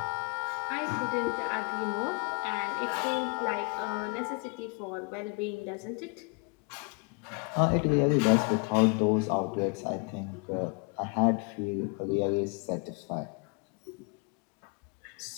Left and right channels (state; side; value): quieter; right; 32.6 dB